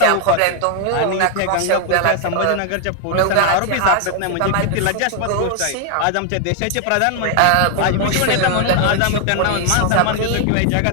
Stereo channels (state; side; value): different; both; correlation 0.00